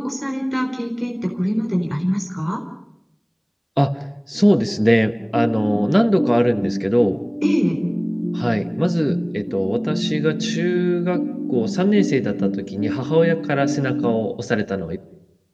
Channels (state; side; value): identical; both; correlation 1.00